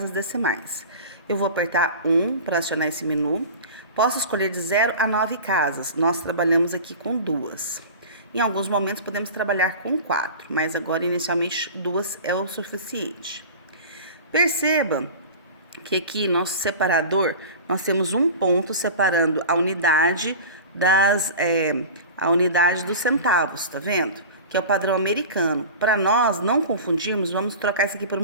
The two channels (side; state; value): both; inverted; correlation -0.34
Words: decimais. Eu vou apertar 1 para acionar esse menu. Posso escolher de 0 a 9 casas. Nós trabalhamos aqui com 2. Em alguns momentos podemos trabalhar com 4, mas agora inicialmente 2 é o suficiente. Perceba que aqui nosso separador, nós temos um ponto separando a unidade dos centavos, tá vendo? Que é o padrão americano. Para nós não confundirmos, vamos trocar isso aqui por